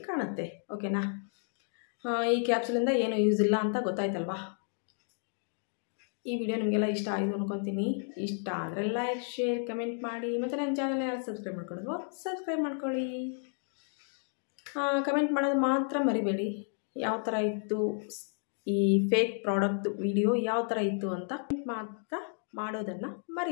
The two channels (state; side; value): silent; right; 57 dB below the other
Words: ಕಾಣುತ್ತೆ. ಓಕೆನಾ. ಈ ಕ್ಯಾಪ್ಸೂಲಿಂದ ಏನು ಯೂಸ್ ಇಲ್ಲ ಅಂತ ಗೊತ್ತಾಯ್ತಲ್ವಾ. ಈ ವಿಡಿಯೋ ನಿಮಗೆಲ್ಲ ಇಷ್ಟ ಆಯಿತು ಅನ್ಕೊತೀನಿ. ಇಷ್ಟ ಆದರೆ ಲೈಕ್, ಶೇರ್, ಕಮೆಂಟ್ ಮಾಡಿ. ಮತ್ತು ನನ್ನ ಚಾನಲ್ನ ಯಾರು ಸಬ್ಸ್ಕ್ರೈಬ್ ಮಾಡ್ಕೊಳ್ಳೋದು ಸಬ್ಸ್ಕ್ರೈಬ್ ಮಾಡ್ಕೊಳ್ಳಿ. ಕಮೆಂಟ್ ಮಾಡೋದು ಮಾತ್ರ ಮರಿಬೇಡಿ. ಯಾವ ಥರ ಇತ್ತು ಈ ಫೇಕ್ ಪ್ರಾಡಕ್ಟ್ ವಿಡಿಯೋ, ಯಾವ ಥರ ಇತ್ತು ಅಂತ ಮಾತ್ರ ಮಾಡೋದನ್ನು